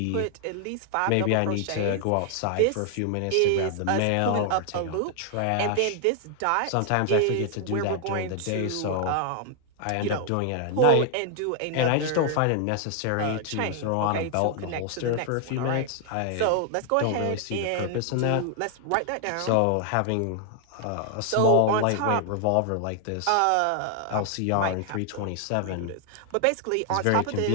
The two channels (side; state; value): both; different; correlation 0.00